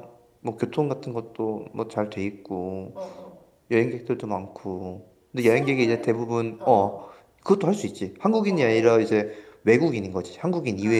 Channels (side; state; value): both; identical; correlation 1.00